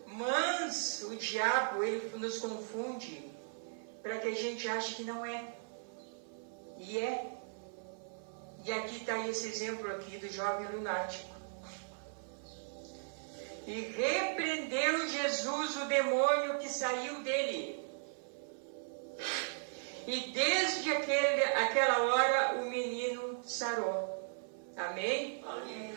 mas o diabo, ele nos confunde para que a gente ache que não é. E é. E aqui está esse exemplo aqui do jovem lunático. E repreendeu Jesus o demônio que saiu dele. E desde aquela hora o menino sarou. Amém? Amém.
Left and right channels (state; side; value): silent; left; 53 dB below the other